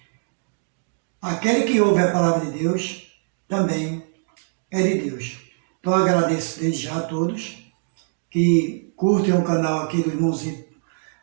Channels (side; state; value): left; silent; digital silence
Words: aquele que ouve a palavra de Deus também é de Deus. Então eu agradeço desde já a todos que curtem o canal aqui do irmãozinho